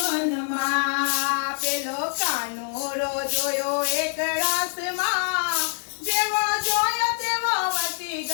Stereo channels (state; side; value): silent; right; digital silence